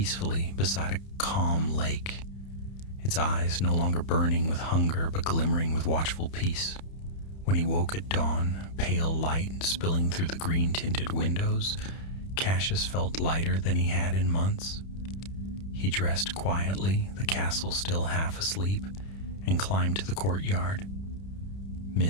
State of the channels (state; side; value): late; right; 31 ms